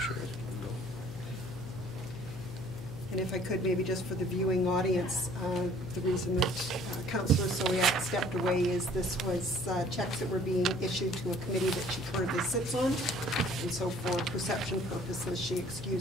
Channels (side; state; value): left; noise; hum, 13 dB below the sound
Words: And if I could, maybe just for the viewing audience, the reason that Councillor Sowiak stepped away is this was checks that were being issued to a committee that she currently sits on. And so for perception purposes, she